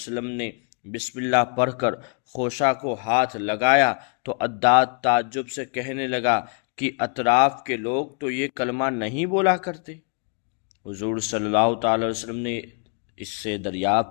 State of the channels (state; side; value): quieter; right; 36.8 dB